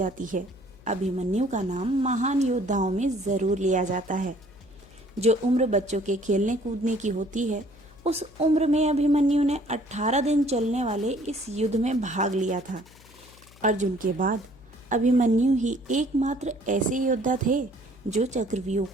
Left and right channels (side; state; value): left; noise; hum, 25 dB below the sound